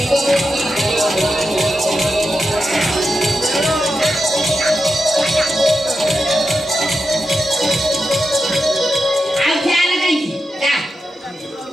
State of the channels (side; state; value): both; normal; correlation 0.89